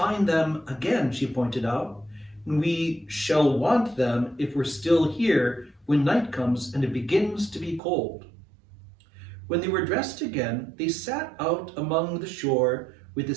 them again," she pointed out, "and we shall want them if we're still here when night comes and it begins to be cold." When they were dressed again, they sat out among the shore with the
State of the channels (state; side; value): drops out; left; at 7.8 s